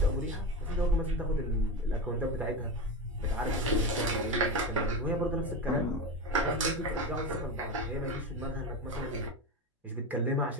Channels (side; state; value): both; normal; correlation 0.20